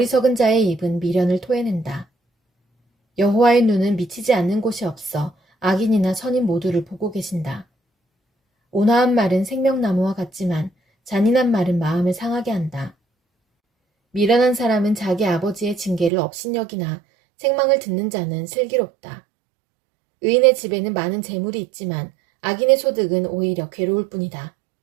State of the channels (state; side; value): drops out; left; at 16.1 s